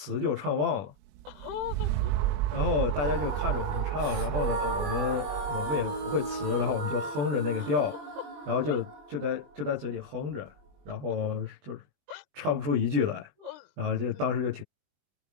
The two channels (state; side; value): late; left; 21 ms